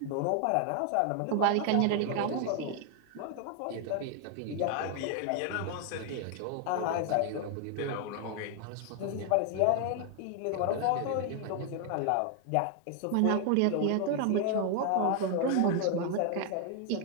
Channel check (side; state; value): both; different; correlation 0.00